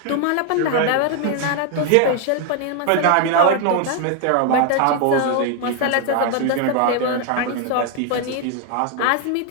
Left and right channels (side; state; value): both; different; correlation 0.00